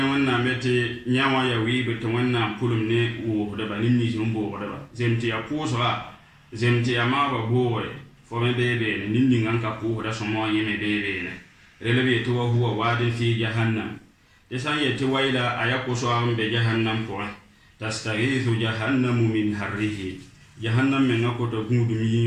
wanna mete nyawa ya wi be to wanna pulum ne wo do ba nimni jum bo do ba zemti ya po so zemti ya ma ba bo fo me be be ne nimni nganka po da so mo yeme be be ne relebe to huwa wadin fi jahannam desan yeti waila ayako so ambe jahannam ko tastaghithu jahannamu min harrihi jahannam men ko to gudu mi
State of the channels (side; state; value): both; identical; correlation 1.00